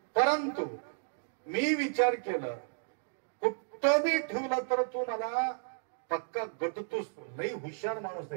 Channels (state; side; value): silent; left; digital silence